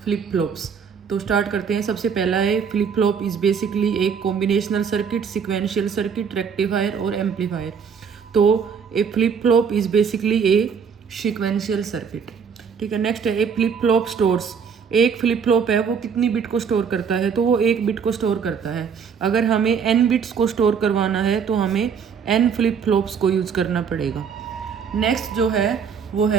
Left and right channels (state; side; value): quieter; left; 6.6 dB